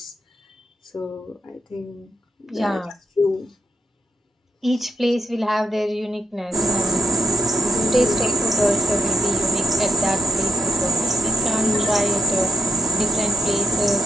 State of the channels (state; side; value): normal; both; correlation 0.72